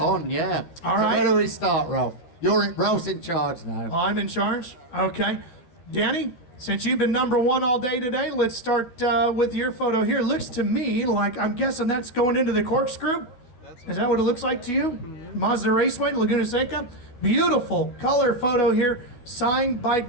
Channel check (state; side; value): late; right; 12 ms